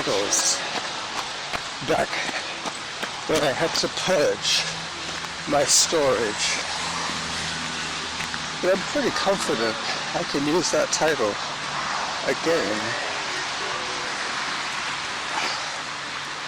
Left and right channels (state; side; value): identical; both; correlation 1.00